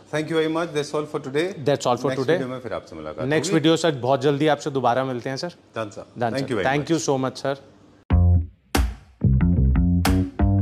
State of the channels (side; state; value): both; identical; correlation 1.00